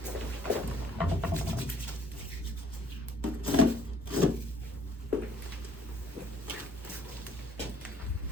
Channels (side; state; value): both; normal; correlation 0.60